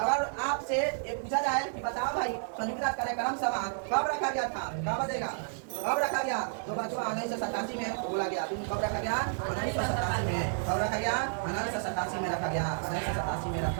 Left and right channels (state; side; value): silent; left; digital silence